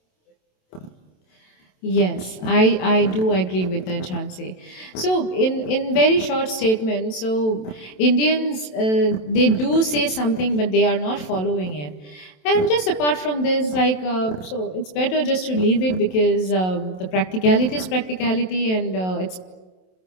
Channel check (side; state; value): right; late; 27 ms